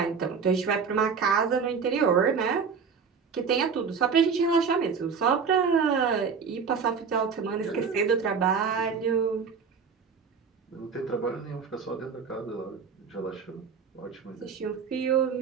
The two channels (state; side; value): quieter; left; 5.9 dB